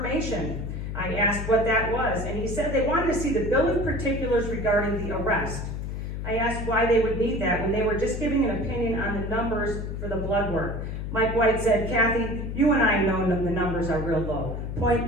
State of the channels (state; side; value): noise; left; hum, 5 dB below the sound